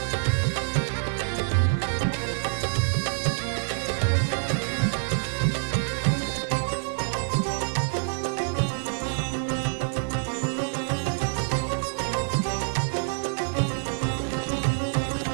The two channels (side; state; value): left; silent; digital silence